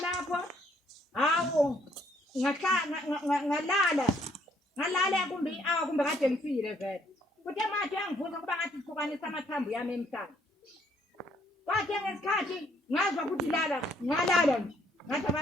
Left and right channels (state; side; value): normal; both; correlation 0.67